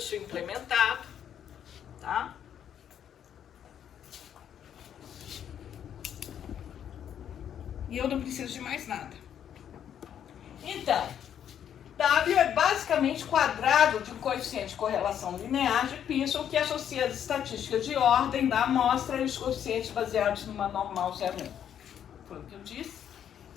implementado, tá? E eu não preciso de mais nada. Então, W é basicamente quadrado de um coeficiente de correlação linear de Pearson que associa as estatísticas de ordem da amostra e os coeficientes baseados numa normal 0,1. Foi o que eu disse.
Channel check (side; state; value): right; quieter; 9.4 dB